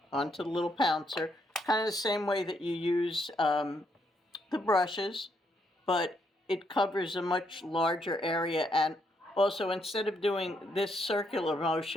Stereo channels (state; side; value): normal; both; correlation 0.75